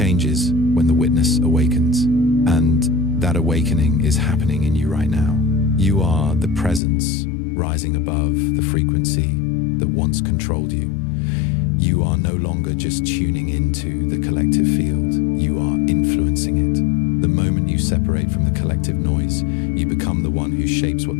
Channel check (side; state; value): right; drops out; at 6.8 s